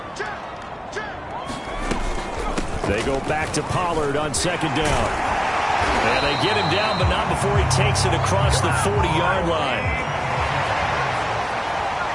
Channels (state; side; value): identical; both; correlation 1.00